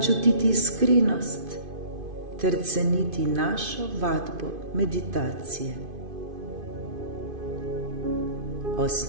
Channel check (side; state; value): left; late; 2.5 ms